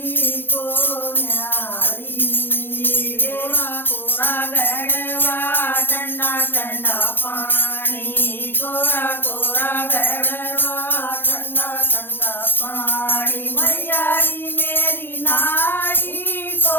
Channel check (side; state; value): right; late; 0.10 ms